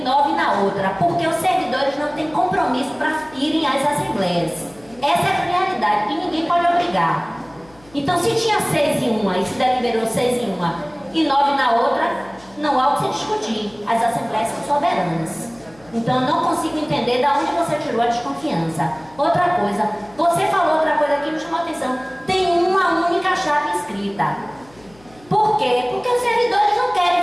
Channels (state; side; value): noise; left; hum, 27 dB below the sound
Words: 9 na outra, porque os servidores não têm compromisso para irem às assembleias. Essa é a realidade, e ninguém pode obrigar. Então, se tinha 6 em uma e se deliberou 6 em uma e 9 na outra, não há o que se discutir. As assembleias são soberanas. Então, eu não consigo entender de onde você tirou a desconfiança. Outra coisa, você falou outra coisa aqui que me chamou a atenção. Tem uma uma única chapa inscrita. Por quê? Porque os servidores não querem